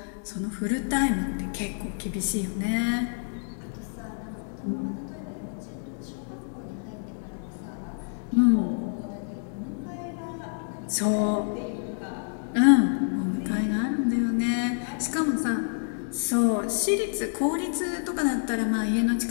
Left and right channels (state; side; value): silent; right; digital silence